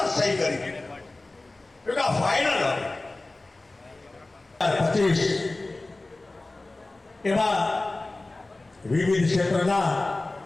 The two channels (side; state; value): right; quieter; 3.0 dB